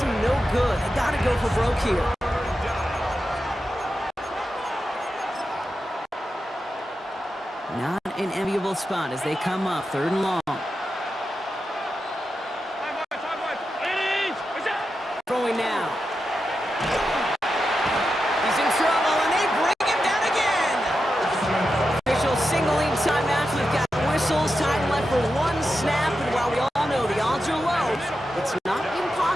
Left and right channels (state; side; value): normal; both; correlation 0.89